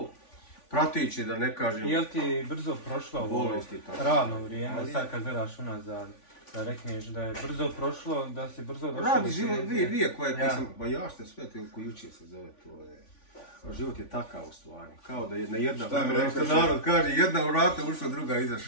prateće, da ne kažem. Jel ti brzo prošlo ovo radno vrijeme, sad kad gledaš unazad? Da rekneš da je brzo prošlo, da si brzo došao. Radi život, vi koje sam, ba ja što sve ko jučer se zove, to je... Život je takav u stvari, kao da jedna, što narod kaže, jedna vrata ušla, druga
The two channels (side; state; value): right; late; 3.5 ms